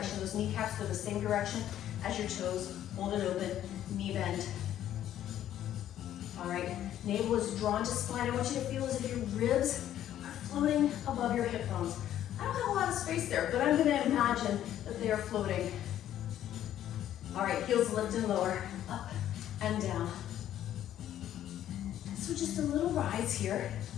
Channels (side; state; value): right; quieter; 11.6 dB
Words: Those kneecaps go the same direction as your toes. Hold it open. Knee bend. All right, navel is drawn to spine. I want you to feel as if your ribs are floating above your hip bones. I don't have a lot of space there, but I'm gonna imagine that they are floating. All right, heels lift and lower, up and down. So just a little rise here.